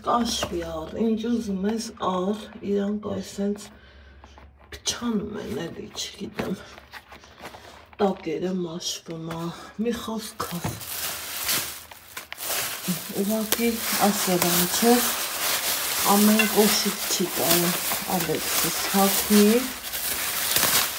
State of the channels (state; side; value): identical; both; correlation 1.00